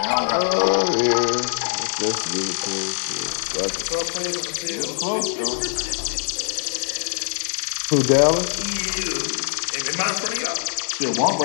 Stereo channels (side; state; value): right; silent; digital silence